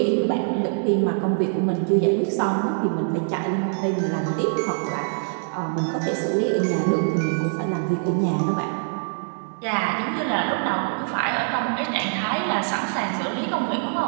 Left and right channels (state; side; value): silent; left; digital silence